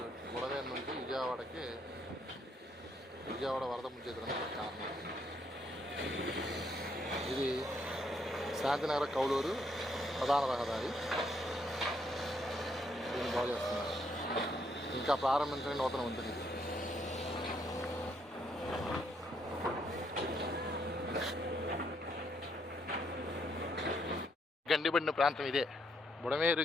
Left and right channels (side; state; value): both; normal; correlation 0.73